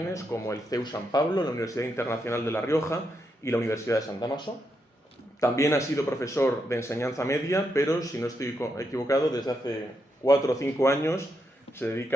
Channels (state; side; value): normal; both; correlation 0.82